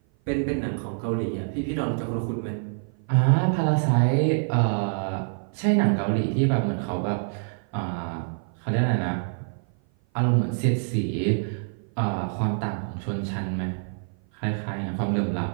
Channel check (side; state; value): left; silent; 56 dB below the other